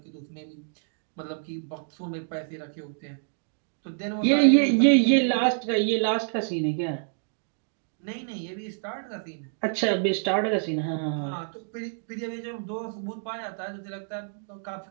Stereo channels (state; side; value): silent; left; digital silence